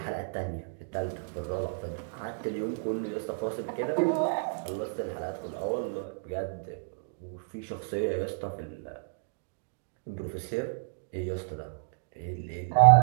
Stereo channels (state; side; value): silent; left; digital silence